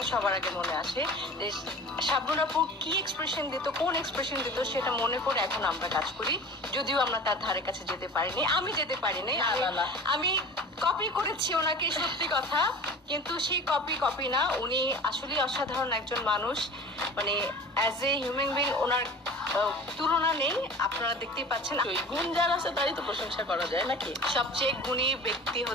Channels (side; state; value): both; normal; correlation 0.39